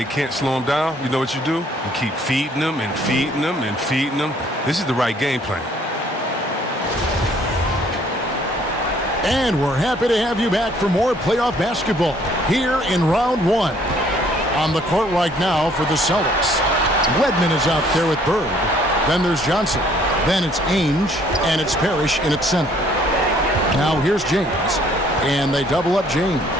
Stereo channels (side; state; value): both; normal; correlation 0.61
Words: can't slow him down, you know what you do? You keep feeding them and feeding them and feeding them. This is the right game plan. And we're happy to have you back for more playoff basketball here in round 1. On the court right now for the Celtics, Wedman is out there with Bird. Then there's Johnson. Then it's Ainge, and it's Parrish in its center. Now here's James, and they double up James.